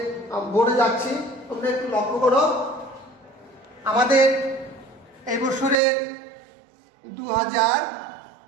বোর্ডে যাচ্ছি, তোমরা একটু লক্ষ্য করো। আমাদের এই বছরের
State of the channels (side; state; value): left; drops out; at 5.8 s